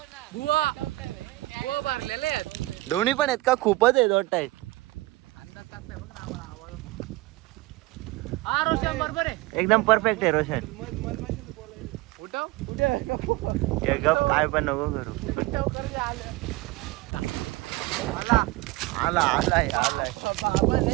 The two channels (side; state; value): left; quieter; 20.2 dB